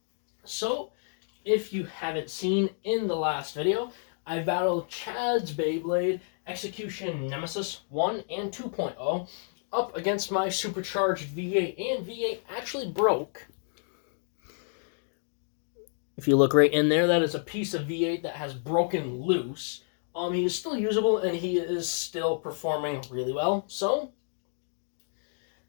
So, if you haven't seen in the last video, I battled Chad's Beyblade Execution Nemesis 1 and 2.0 up against my supercharged V8, and V8 actually broke. If you look right in there, that is a piece of V8 that has broken loose. He is still usable, and he is still performing really well. So,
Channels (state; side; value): silent; right; 58 dB below the other